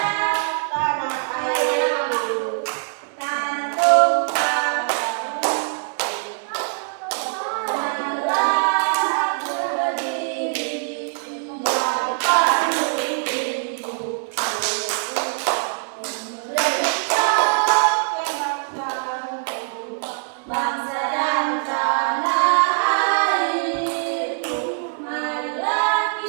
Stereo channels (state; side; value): silent; left; digital silence